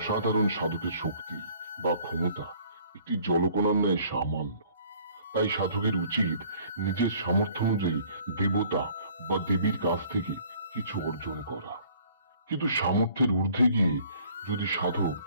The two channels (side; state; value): both; inverted; correlation -0.56